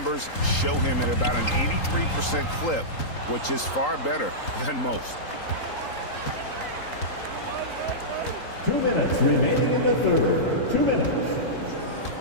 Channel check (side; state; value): right; late; 3.8 ms